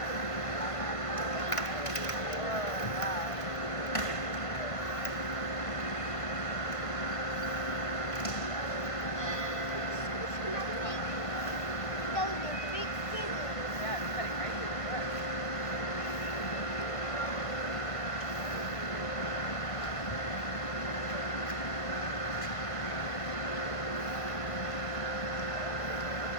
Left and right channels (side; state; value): right; late; 1.5 ms